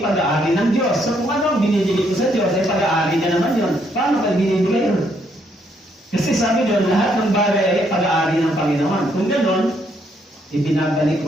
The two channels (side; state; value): both; normal; correlation 0.72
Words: pag-aari ng Diyos. So kung ano ang binibigay ko sa Diyos, ay pag-aari niya naman yun. Paano ka binibigay yun? Kasi sabi doon, lahat ng bagay ay pag-aari ng Panginoon. Kung gano'n, ibinabalik